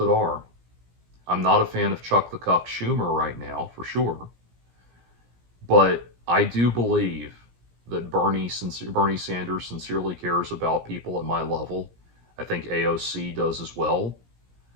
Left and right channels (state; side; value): late; left; 17 ms